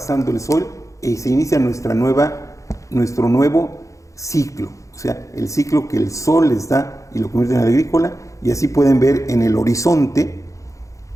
el sol y se inicia nuestro nuevo ciclo, o sea, el ciclo que el sol les da y lo convierte en agrícola, y así pueden ver en el horizonte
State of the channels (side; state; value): right; late; 0.15 ms